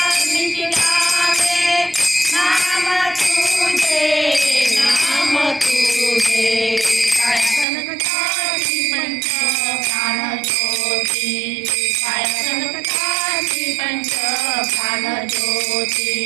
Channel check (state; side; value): drops out; left; at 7.7 s